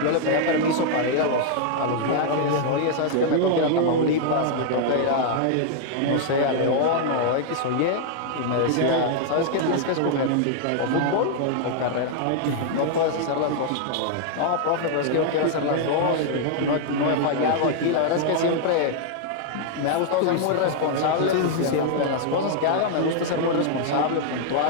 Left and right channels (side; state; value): both; different; correlation -0.01